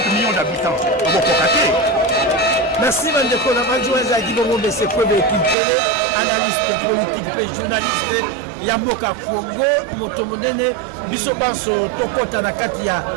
millions d'habitants. Merci Mandeko, la adjoint Zaki Bongo de Sekwebe Kimpele, analyste politique, journaliste, Yamboka Congo, Motomonene, Bisobanso, Tokota Nakati ya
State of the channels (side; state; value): left; drops out; at 5.6 s